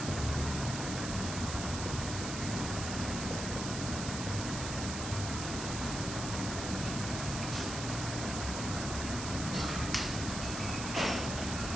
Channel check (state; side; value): noise; right; hiss, 6 dB below the sound